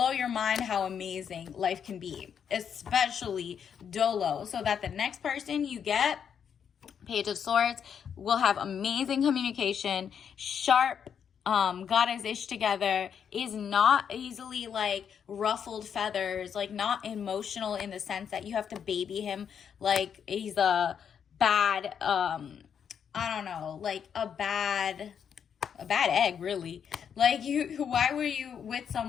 your mind how amazing life can be, especially dolo, so that the next person you get, Page of Swords, will have amazing communication, sharp, got his ish together, is not easily like ruffled feathers, like not emotional in the sense that you have to baby him like he's a bad, I don't know, like a bad egg, really. Like why were you with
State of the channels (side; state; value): right; quieter; 7.8 dB